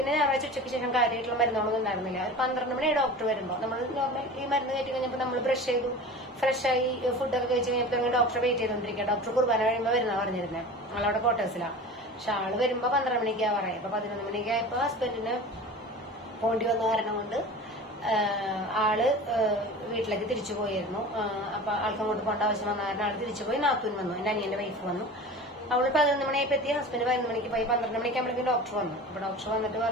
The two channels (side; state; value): both; normal; correlation 0.36